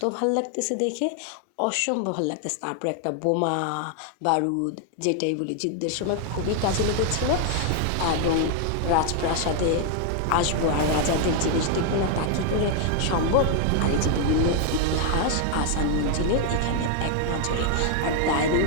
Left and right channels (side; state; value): both; different; correlation 0.00